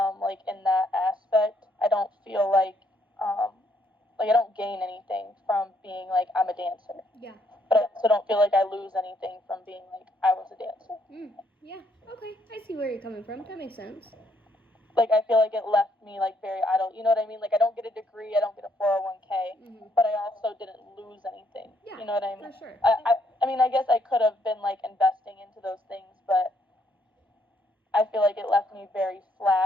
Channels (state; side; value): normal; both; correlation 0.71